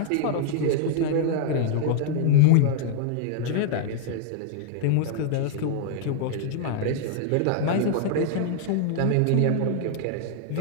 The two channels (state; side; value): different; both; correlation -0.01